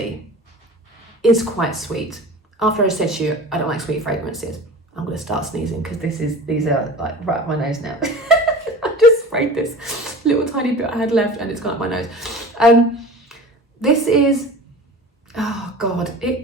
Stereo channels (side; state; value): both; normal; correlation 0.37